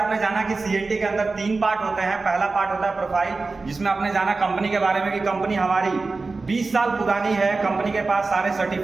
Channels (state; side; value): quieter; left; 3.8 dB